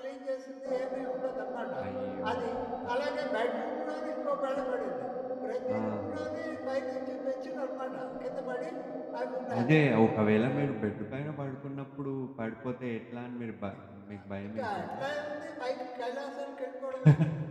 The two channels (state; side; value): identical; both; correlation 1.00